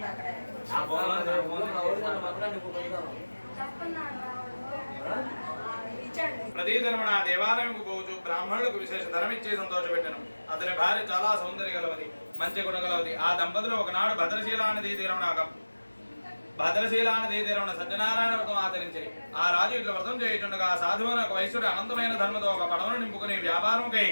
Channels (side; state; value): both; inverted; correlation -1.00